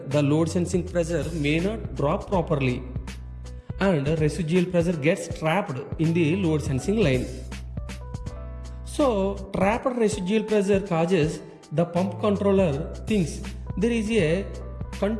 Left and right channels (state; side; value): identical; both; correlation 1.00